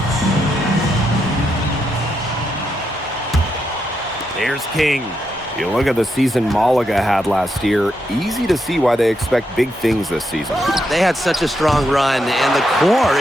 Here's King. You look at the season Malaga had last year, easy to see why they expect big things this season. They had such a strong run, and the core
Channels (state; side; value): normal; both; correlation 0.82